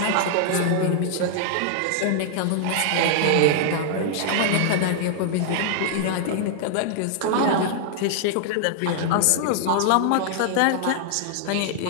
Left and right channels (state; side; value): different; both; correlation 0.00